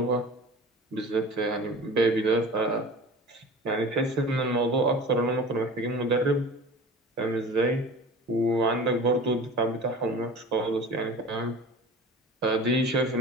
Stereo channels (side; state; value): both; normal; correlation 0.38